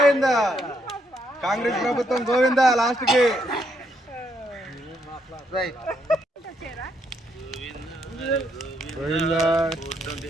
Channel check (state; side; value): normal; both; correlation 0.75